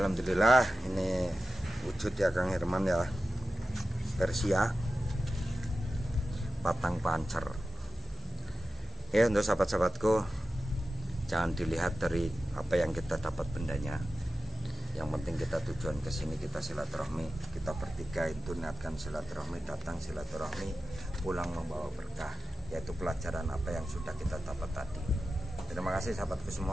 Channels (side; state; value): both; normal; correlation 0.93